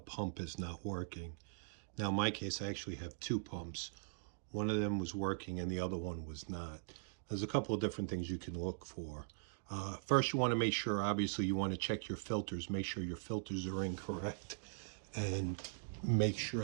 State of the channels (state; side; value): silent; left; digital silence